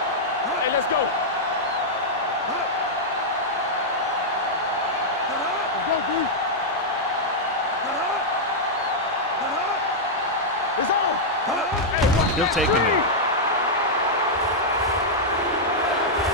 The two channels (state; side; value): normal; both; correlation -0.06